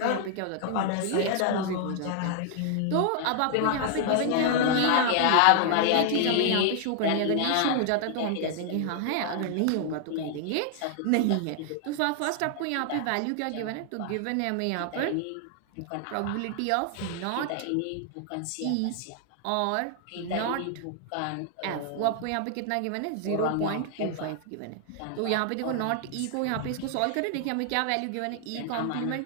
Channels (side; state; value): both; different; correlation 0.00